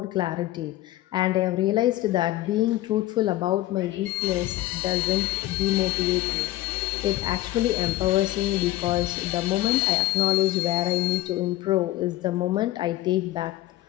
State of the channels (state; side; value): quieter; right; 16.2 dB